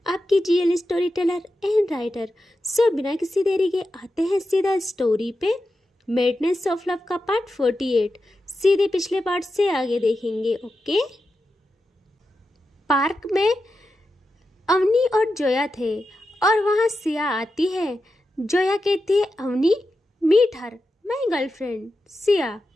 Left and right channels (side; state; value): both; normal; correlation 0.90